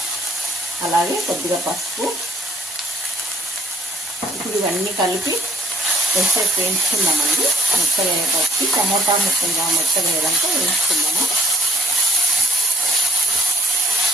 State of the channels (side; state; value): both; normal; correlation 0.70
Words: అలాగే కొద్దిగా పసుపు. ఇప్పుడు ఇవన్నీ కలిపి కొంచెం వేయించుకుందామండి. మెత్తగా వేయడానికి టమోటా ముక్కలుగా మెత్తగా వేయడానికి వేయించుకుందాము.